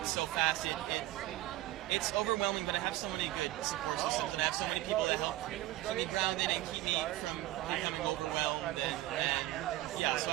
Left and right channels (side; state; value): left; quieter; 16.2 dB